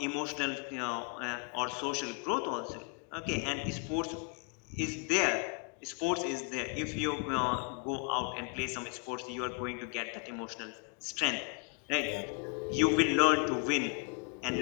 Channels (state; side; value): quieter; right; 34.7 dB